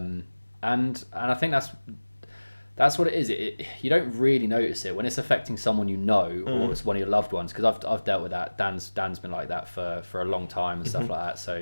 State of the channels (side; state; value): both; inverted; correlation -1.00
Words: I think that's what it is. You don't really notice it when it's affecting someone you know, or it's one of your loved ones. Because I've dealt with that. Dan's been like that for a long time and stuff like that.